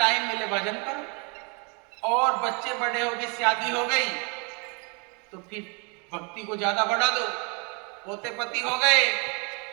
मिले भजन करो, और बच्चे बड़े हो गए, शादी हो गई तो फिर भक्ति को ज्यादा बढ़ा दो। पोते पति हो गए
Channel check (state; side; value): quieter; left; 33.9 dB